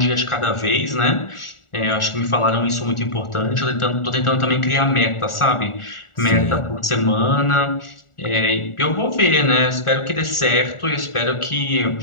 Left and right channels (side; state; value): right; late; 1.4 ms